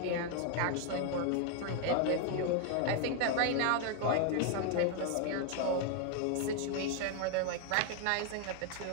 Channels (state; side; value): different; both; correlation 0.00